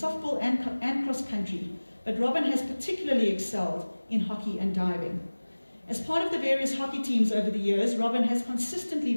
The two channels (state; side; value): inverted; both; correlation -1.00